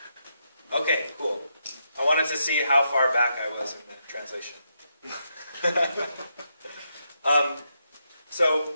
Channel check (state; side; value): inverted; both; correlation -0.81